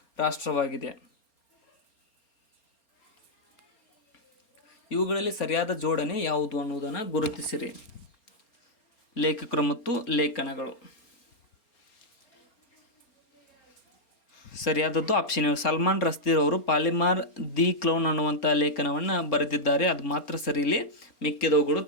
ರಾಷ್ಟ್ರವಾಗಿದೆ. ಇವುಗಳಲ್ಲಿ ಸರಿಯಾದ ಜೋಡಣೆ ಯಾವುದು ಅನ್ನುವುದನ್ನು ಗುರುತಿಸಿರಿ. ಲೇಖಕರು ಮತ್ತು ಲೇಖನಗಳು. ಸರಿಯಾದದ್ದು ಆಪ್ಷನ್ ಎ. ಸಲ್ಮಾನ್ ರಸ್ದೀರ್ ಅವರು ಪಾಲಿಮಾರ್ ದಿ ಕ್ಲೌನ್ ಅನ್ನುವಂಥ ಲೇಖನವನ್ನು ಬರೆದಿದ್ದಾರೆ. ಅದು ಮಾತ್ರ ಸರಿ, ಇಲ್ಲಿ ಮಿಕ್ಕಿದವುಗಳು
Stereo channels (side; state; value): right; late; 4.3 ms